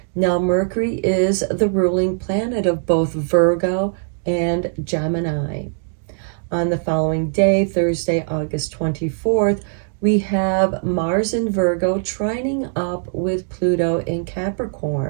Now, Mercury is the ruling planet of both Virgo and Gemini. On the following day, Thursday, August 24th, we have Mars in Virgo trining up with Pluto in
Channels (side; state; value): left; silent; digital silence